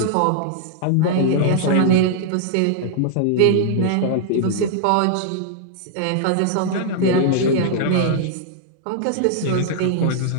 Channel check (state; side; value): different; both; correlation -0.01